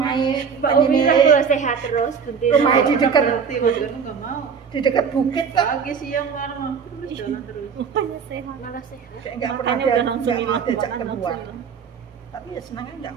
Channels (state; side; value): quieter; left; 6.4 dB